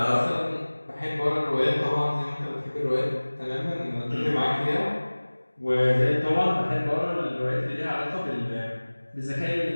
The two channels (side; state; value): both; inverted; correlation -1.00